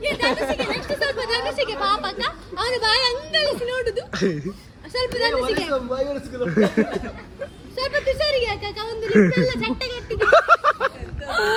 ಅವನು ಬಾಯಿ ಅಂಗಳಿಸಿ ನೋಡುದು. ಸ್ವಲ್ಪ ಸ್ವಲ್ಪ ತುಷಾರಿಗೆ ಹಾಕ. ಒಂದು ಲಿಪ್ಪೆಲ್ಲ ಚಟ್ಟಗಟ್ಟಿಗೆ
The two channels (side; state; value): both; identical; correlation 1.00